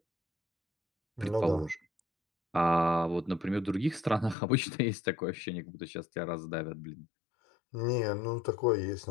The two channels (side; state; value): right; drops out; at 4.4 s